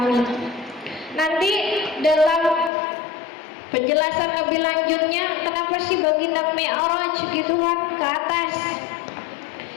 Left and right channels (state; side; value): drops out; right; at 2.7 s